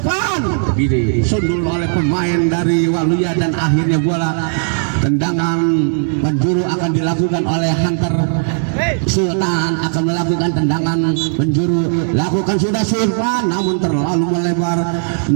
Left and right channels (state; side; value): silent; left; 64 dB below the other